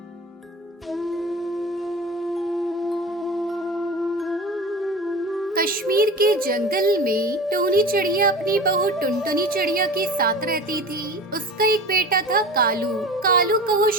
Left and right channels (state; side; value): normal; both; correlation 0.34